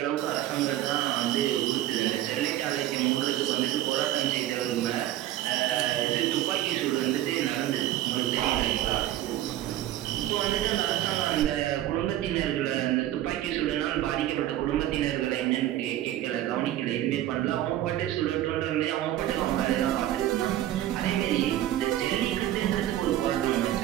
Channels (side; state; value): left; quieter; 13.3 dB